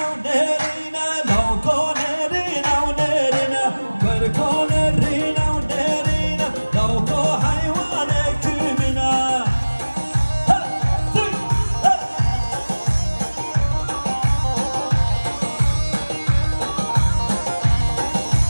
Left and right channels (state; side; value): inverted; both; correlation -1.00